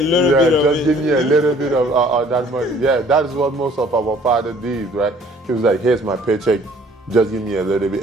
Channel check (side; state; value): both; normal; correlation 0.56